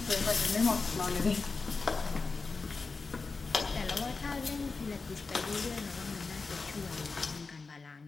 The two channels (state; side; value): quieter; right; 4.3 dB